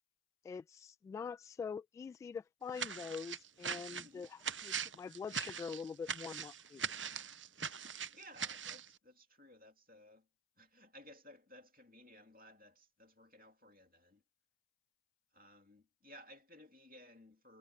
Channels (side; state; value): both; normal; correlation 0.34